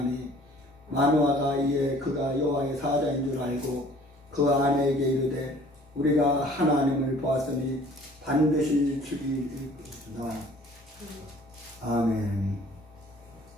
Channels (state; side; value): normal; both; correlation 0.52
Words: 마노아가 이에 그가 여호와의 사자인 줄 알고 그 아내에게 이르되 우리가 하나님을 보았으니 반드시 죽이리이다. 아멘.